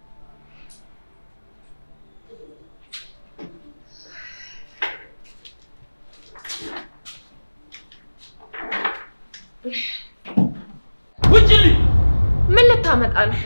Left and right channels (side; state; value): both; inverted; correlation -1.00